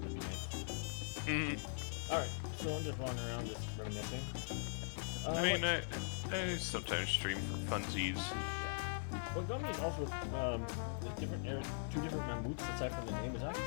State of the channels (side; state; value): right; silent; 50 dB below the other